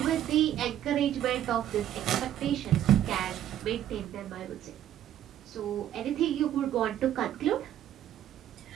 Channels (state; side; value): quieter; left; 11.4 dB